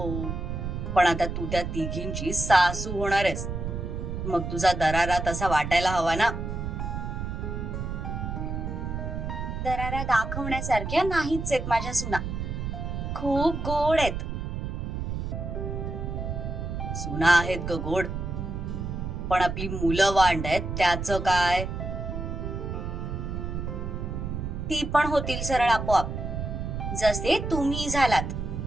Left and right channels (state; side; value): noise; right; rumble, 4 dB below the sound